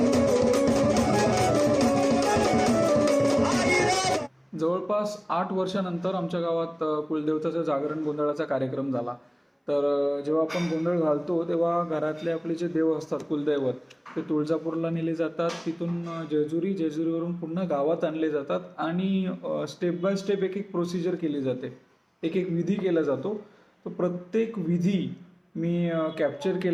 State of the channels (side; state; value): both; identical; correlation 1.00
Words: जवळपास 8 वर्षानंतर आमच्या गावात कुलदेवताचा जागरण गोंधळाचा कार्यक्रम झाला. तर जेव्हा आपण गोंधळ घालतो तेव्हा घरातले आपले जे देव असतात कुलदैवत ते तुळजापूरला नेले जातात. तिथून जेजुरीवरून पुन्हा गावात आणले जातात आणि स्टेप बाय स्टेप एक एक प्रोसिजर केली जाते, एक एक विधी केला जातो. तो प्रत्येक विधी मी कॅप्चर